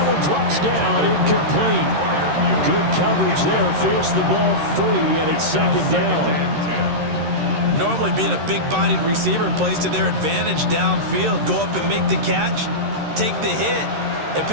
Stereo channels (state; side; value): late; left; 13 ms